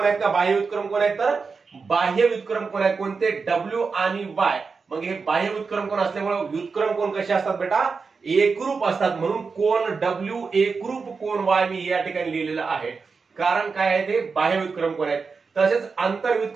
आहेत का बाह्य व्युत्क्रम कोण आहेत, तर बाह्य व्युत्क्रम कोण आहेत, कोणते, डब्ल्यू आणि वाय. मग हे बाह्य व्युत्क्रम कोण असल्यामुळे व्युत्क्रम कोण कसे असतात बेटा, एकरूप असतात. म्हणून कोण डब्ल्यू एकरूप कोण वाय मी या ठिकाणी लिहिलेलं आहे. कारण काय आहे, ते बाह्य व्युत्क्रम कोण आहेत. तसेच आंतर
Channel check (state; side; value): quieter; left; 4.9 dB